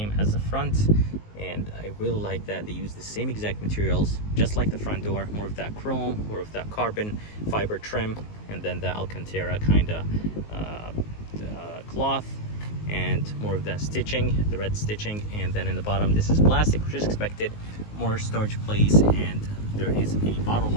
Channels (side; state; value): right; late; 19 ms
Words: as the front, and I really like that they use the same exact materials, just like the front door. More of that chrome, more of that carbon fiber trim, and then the Alcantara kind of cloth, and more of that stitching, the red stitching. And then in the bottom, this is plastic, which is expected. More storage place, and there is a bottle